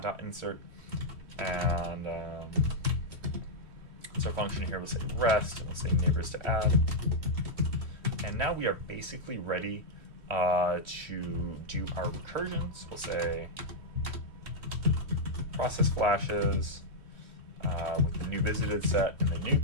insert, and so our function here will say rest, and we'll say neighbors to add. And now we are basically ready to do our recursion. So we'll say process flashes with the new visited set and the new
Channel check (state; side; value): late; left; 3.1 ms